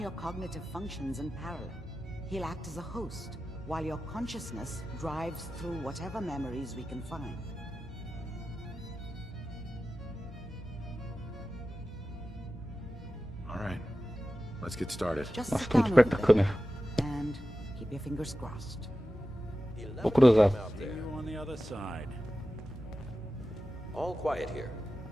your cognitive functions in parallel. He'll act as a host, while your consciousness drives through whatever memories we can find. All right. Let's get started. Just Nossa, sit tô muito down a perto da little câmera. bit and keep your fingers crossed. Vou cruzar. See you on the other side. All quiet here.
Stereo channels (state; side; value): normal; both; correlation 0.94